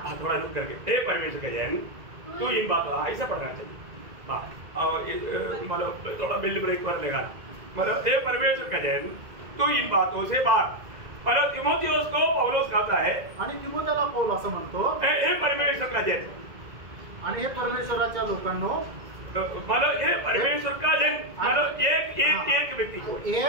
थोड़ा रुक करके, हे परमेश्वर का जन तू इन बातों, ऐसा पढ़ना चाहिए। मतलब थोड़ा बिल्ड ब्रेक पर लगाना, मतलब हे परमेश्वर का जन तू इन बातों से भाग। मतलब तिमोथियोस को पौलुस कहता है, आणि तिमोथेला पौल असं म्हणतो, हे परमेश्वर का जन, आणि हे परमेश्वराच्या लोकांनो, मतलब हे परमेश्वर का जन मतलब एक व्यक्ती को, हे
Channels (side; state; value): left; late; 2.0 ms